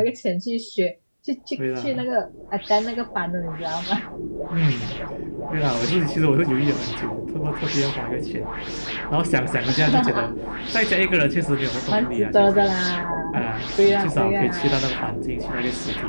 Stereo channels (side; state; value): both; inverted; correlation -1.00